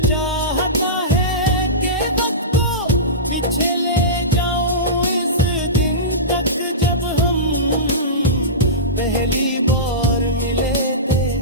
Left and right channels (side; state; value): both; normal; correlation -0.19